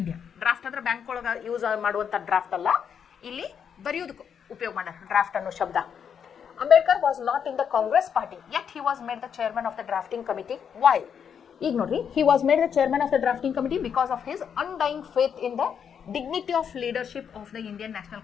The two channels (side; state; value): right; quieter; 7.6 dB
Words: Draft ಅಂದ್ರೆ bank ಒಳಗೆ use ಮಾಡುವಂಥ draft ಅಲ್ಲ, ಇಲ್ಲಿ ಬರೆಯೋದಕ್ಕೆ ಉಪಯೋಗ ಮಾಡ್ಯಾರ ಡ್ರಾಫ್ಟ್ ಅನ್ನೋ ಶಬ್ದ. Ambedkar was not in the Congress party yet he was made the chairman of the drafting committee. Why? ಈಗ ನೋಡ್ರಿ, he was made the chairman of the drafting committee because of his ಅನ್ಡೈಯಿಂಗ್ faith in the dignity of leadership of the Indian National